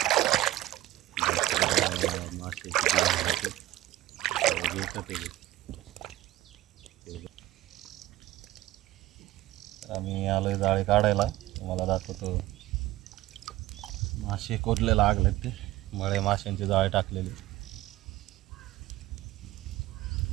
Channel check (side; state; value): left; quieter; 16.1 dB